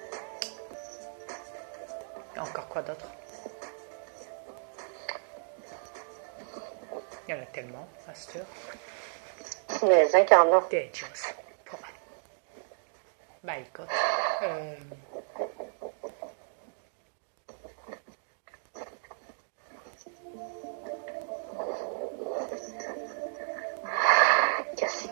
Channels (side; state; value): left; silent; digital silence